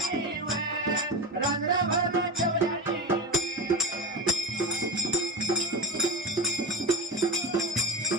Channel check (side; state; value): both; normal; correlation 0.23